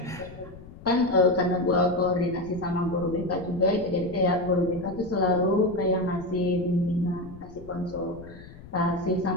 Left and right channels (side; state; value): left; noise; rumble, 17 dB below the sound